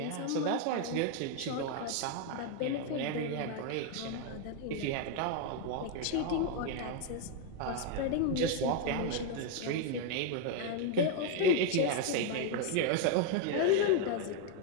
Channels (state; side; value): different; both; correlation 0.01